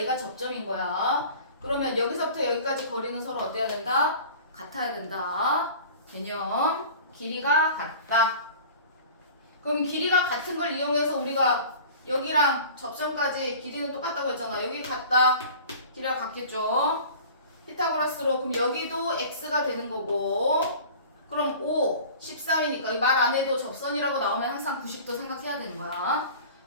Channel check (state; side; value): inverted; both; correlation -0.42